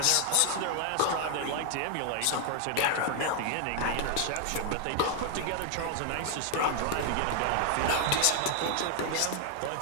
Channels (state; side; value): different; both; correlation 0.00